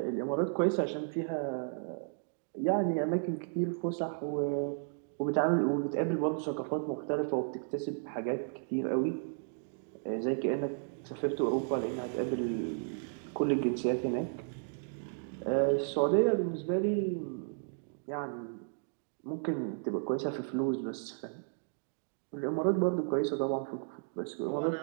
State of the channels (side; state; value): left; silent; digital silence